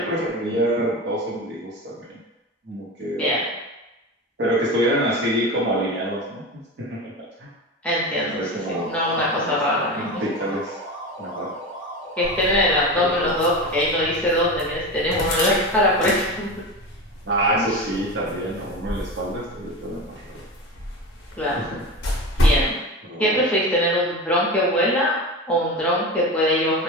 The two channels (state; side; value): normal; both; correlation 0.26